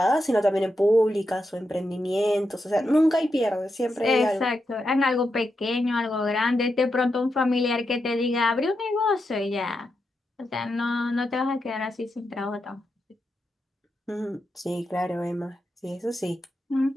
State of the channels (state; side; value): normal; both; correlation 0.86